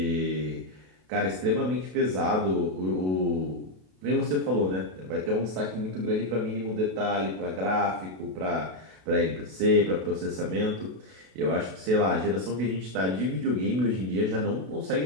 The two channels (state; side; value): late; left; 32 ms